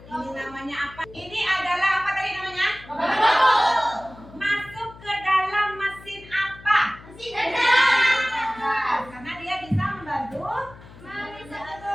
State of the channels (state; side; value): noise; left; hum, 20 dB below the sound